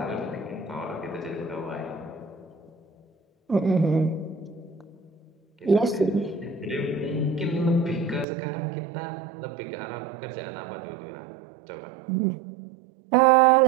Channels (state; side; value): drops out; left; at 8.2 s